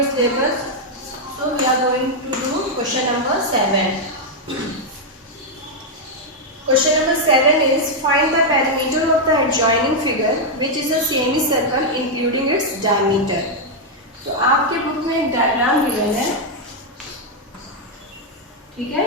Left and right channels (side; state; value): both; normal; correlation -0.01